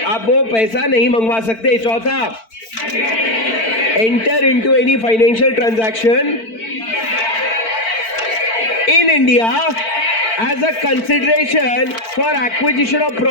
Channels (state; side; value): late; right; 4.5 ms